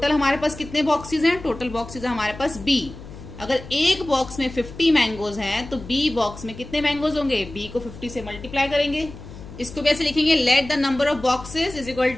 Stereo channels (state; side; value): noise; left; hum, 15 dB below the sound